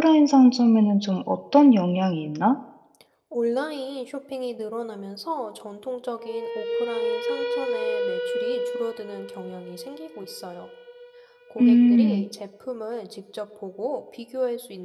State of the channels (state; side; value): identical; both; correlation 1.00